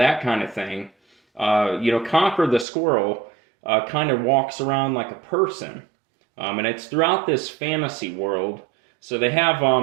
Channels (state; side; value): drops out; left; at 2.7 s